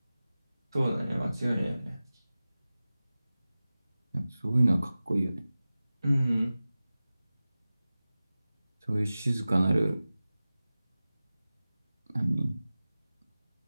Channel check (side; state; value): both; inverted; correlation -0.96